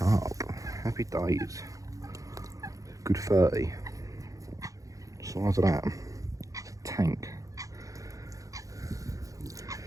Happy days. Good 30. Size of that. It's a tank.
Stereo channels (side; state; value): left; late; 0.16 ms